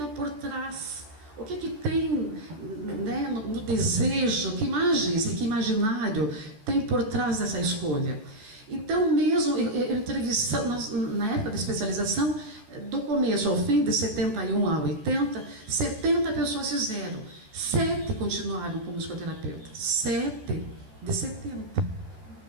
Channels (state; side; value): late; left; 14 ms